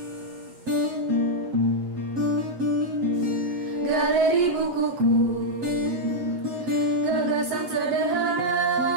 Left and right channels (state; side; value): late; left; 8.2 ms